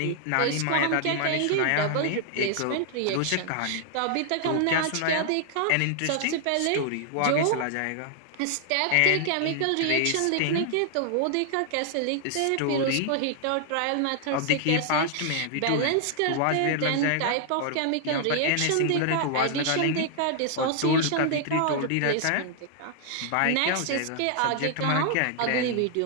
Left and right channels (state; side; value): different; both; correlation -0.01